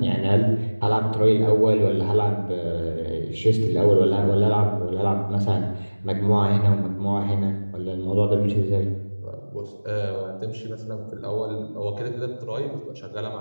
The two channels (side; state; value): both; inverted; correlation -1.00